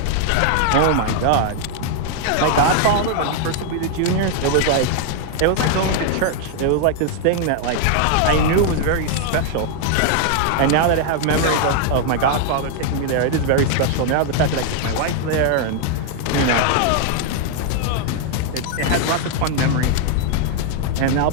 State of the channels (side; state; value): both; different; correlation 0.00